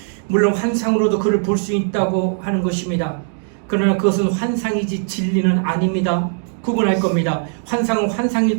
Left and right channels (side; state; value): left; silent; 62 dB below the other